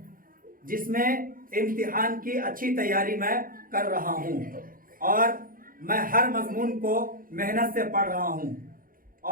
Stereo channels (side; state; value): left; late; 0.41 ms